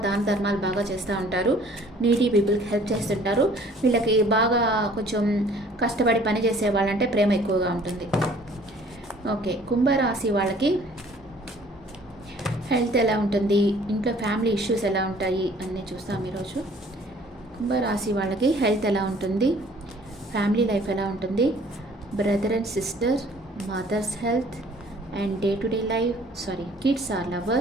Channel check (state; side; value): normal; both; correlation 0.55